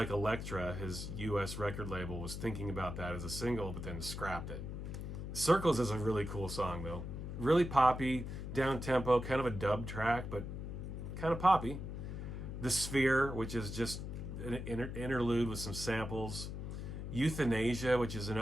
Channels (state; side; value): noise; left; hum, 6 dB below the sound